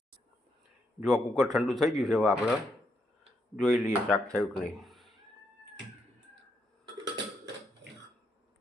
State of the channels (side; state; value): both; normal; correlation 0.78